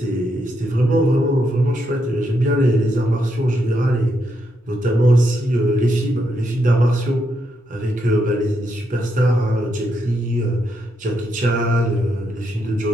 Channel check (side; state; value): both; normal; correlation 0.80